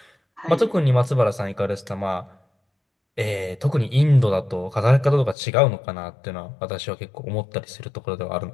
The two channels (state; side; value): drops out; right; at 5.4 s